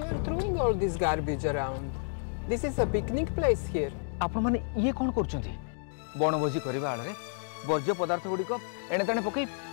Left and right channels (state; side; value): silent; right; digital silence